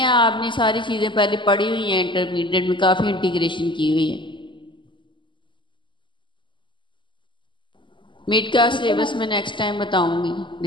आपने सारी चीज़ें पहले पढ़ी हुई हैं, इंटरमीडिएट में काफ़ी इंटीग्रेशन की हुई है। मिड का सिलेबस में नेक्स्ट टाइम बताऊंगी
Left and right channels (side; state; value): right; late; 0.24 ms